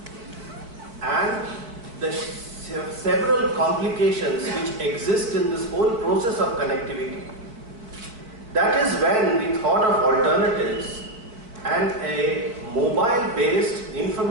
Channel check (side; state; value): left; late; 4.5 ms